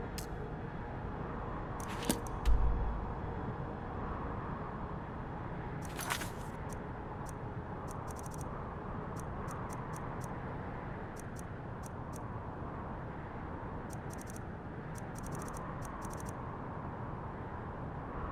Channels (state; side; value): identical; both; correlation 1.00